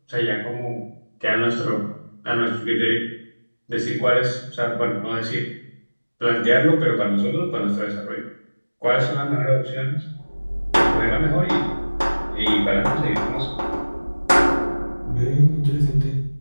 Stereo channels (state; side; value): inverted; both; correlation -1.00